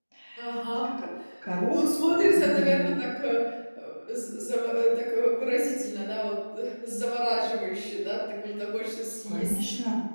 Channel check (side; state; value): both; inverted; correlation -1.00